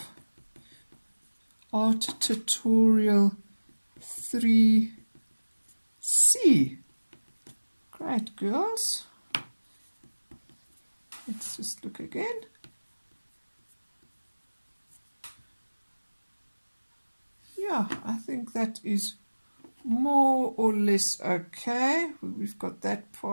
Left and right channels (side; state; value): both; inverted; correlation -1.00